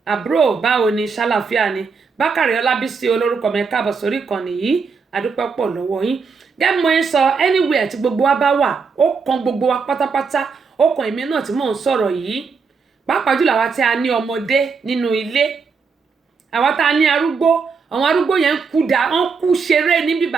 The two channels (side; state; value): left; quieter; 5.2 dB